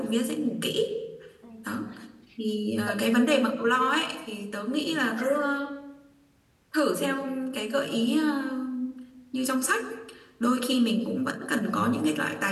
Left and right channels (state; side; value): identical; both; correlation 1.00